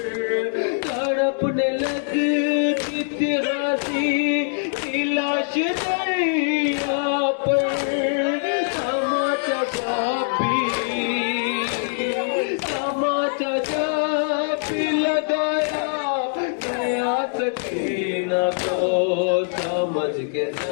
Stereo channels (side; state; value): right; silent; digital silence